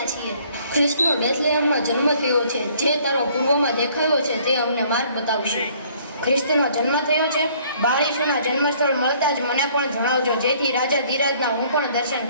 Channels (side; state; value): both; inverted; correlation -0.60